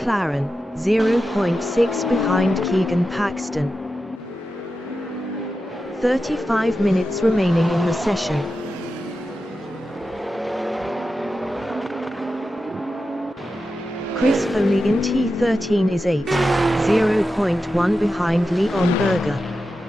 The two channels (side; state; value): both; normal; correlation 0.90